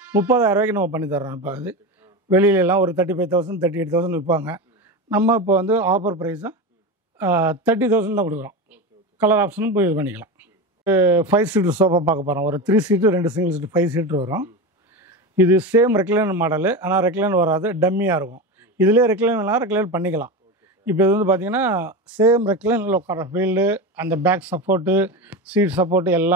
30,000 நம்ம பண்ணி தர்றோம். இப்போ அது வெளியிலலாம் ஒரு 35,000 38,000 விற்பாங்க. நம்ம இப்போ வந்து ஆஃபர் ப்ரைஸாக 30,000 தான் கொடுக்குறோம். கலர் ஆப்ஷனும் போய் இது பண்ணிக்கலாம். 5 சீட்ரு சோஃபா பார்க்க போகிறோம். ஒரு 3 சீட்டு 2 சிங்கிள் சீட்டு 5 சீட்ரு வரும். இது சேம் ரெக்லைனர் மாடலு, ஆனால் ரெக்லைனர் வராது, டம்மியாக இருக்கும். இதிலே ரெக்லைன் பண்ணிக்கலாம். இப்போ இது வந்து பார்த்திங்கன்னா சேம் ரெக்லைனில் உட்கார ஃபீல்டு, அந்த பேக் சப்போர்ட்டு, சீட் சப்போர்ட்டு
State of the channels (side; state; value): both; normal; correlation 0.22